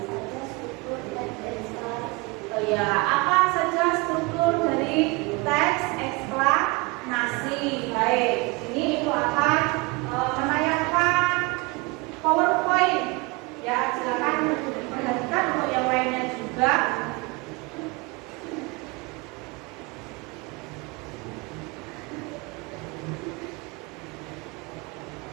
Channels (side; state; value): left; quieter; 26.0 dB